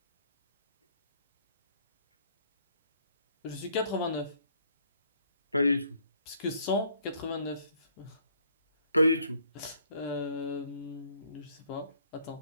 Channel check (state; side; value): inverted; both; correlation -0.64